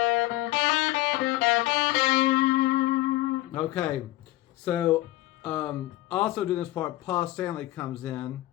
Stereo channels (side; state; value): right; quieter; 17.0 dB